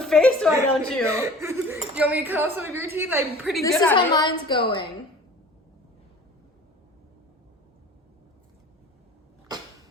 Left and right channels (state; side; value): normal; both; correlation 0.44